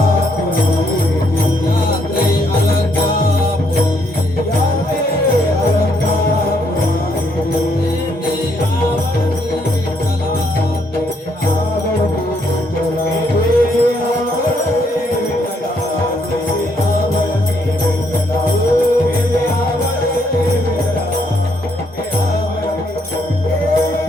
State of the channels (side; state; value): both; normal; correlation 0.72